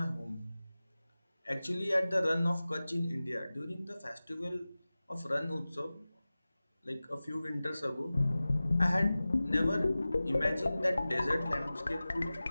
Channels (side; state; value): both; inverted; correlation -0.97